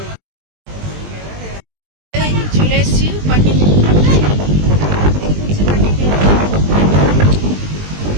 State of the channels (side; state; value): left; late; 20 ms